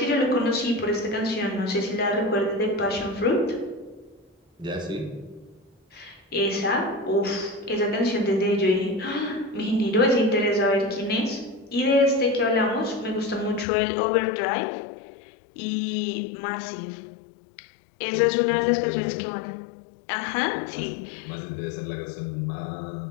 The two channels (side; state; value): right; drops out; at 13.7 s